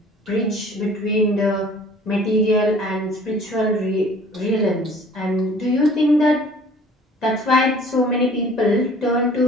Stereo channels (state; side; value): normal; both; correlation 0.51